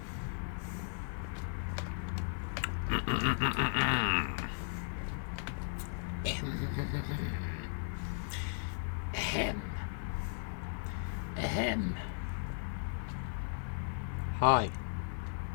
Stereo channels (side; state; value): right; silent; digital silence